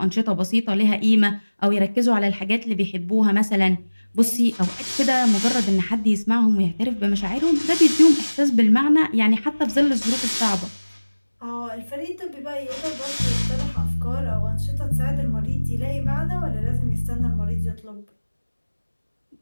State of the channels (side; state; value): both; inverted; correlation -1.00